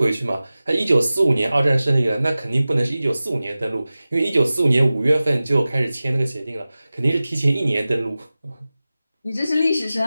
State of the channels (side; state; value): both; inverted; correlation -0.96